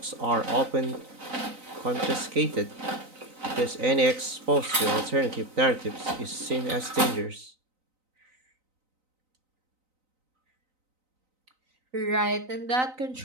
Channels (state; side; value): late; left; 3.9 ms